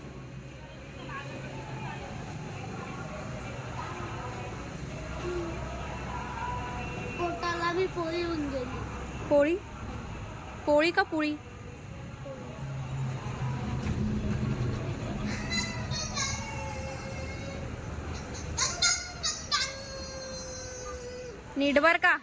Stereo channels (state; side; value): identical; both; correlation 1.00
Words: पोटाला बी पोळी होऊन गेली. पोळी पोळी का पोळी. नीट बर का.